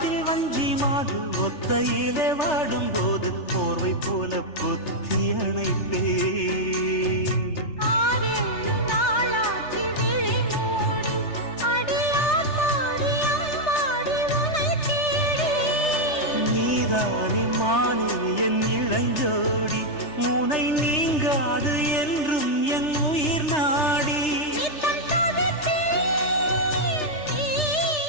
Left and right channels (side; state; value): right; late; 3.4 ms